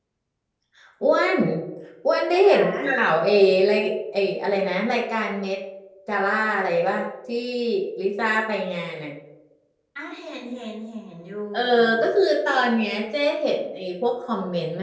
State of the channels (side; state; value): both; identical; correlation 1.00